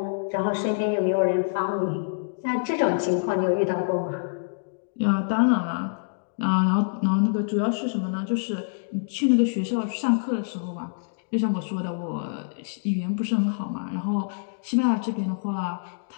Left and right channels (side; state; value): right; silent; digital silence